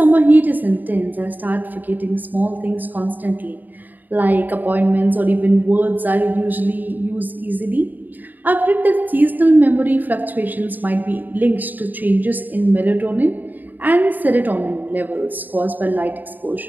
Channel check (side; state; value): left; late; 0.087 ms